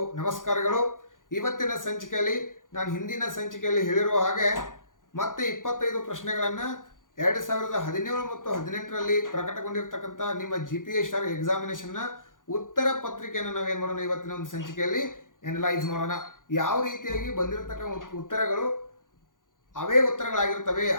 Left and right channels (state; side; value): late; right; 0.89 ms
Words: ನಮಸ್ಕಾರಗಳು. ಇವತ್ತಿನ ಸಂಚಿಕೆಯಲ್ಲಿ ನಾನು ಹಿಂದಿನ ಸಂಚಿಕೆಯಲ್ಲಿ ಹೇಳಿರುವ ಹಾಗೆ ಮತ್ತೆ 25 ಪ್ರಶ್ನೆಗಳನ್ನು 2017 ಮತ್ತು 18ರಲ್ಲಿ ಪ್ರಕಟಗೊಂಡಿರ್ತಕ್ಕಂಥ ನಿಮ್ಮ GPS ಸ್ಟಾರ್ ಎಕ್ಸಾಮಿನೇಷನ್ನ ಉತ್ತರ ಪತ್ರಿಕೆಯನ್ನು ನಾವೇನು ಮಾಡೋಣ, ಇವತ್ತಿನ ಒಂದು ಸಂಚಿಕೆಯಲ್ಲಿ ಎನಲೈಸ್ ಮಾಡೋಣ. ಯಾವ ರೀತಿಯಾಗಿ ಬಂದಿರತಕ್ಕಂಥ ಉತ್ತರಗಳು ಅವೇ ಉತ್ತರಗಳಾಗಿರ್ತವೆ,